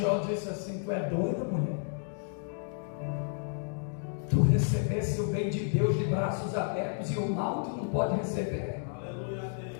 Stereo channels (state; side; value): silent; right; digital silence